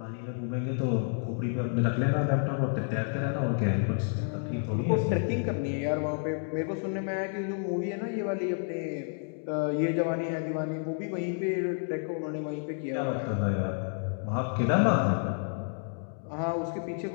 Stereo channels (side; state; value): right; silent; 58 dB below the other